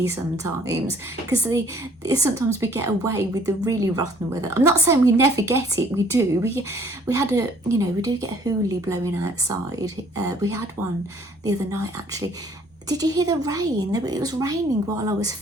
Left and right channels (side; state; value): both; normal; correlation 0.59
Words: sometimes, because sometimes we get away with the really rotten weather. I'm not saying we never get it, we do. We had a, you know, we do get a hoolie blowing outside. We had one the other night actually. Did you hear the rain? It was raining while I was